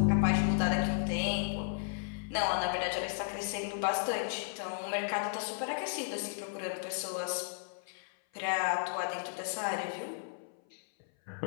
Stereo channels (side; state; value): right; silent; 55 dB below the other